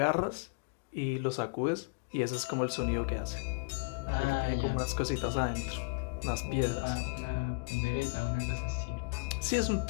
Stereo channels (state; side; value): quieter; right; 32.5 dB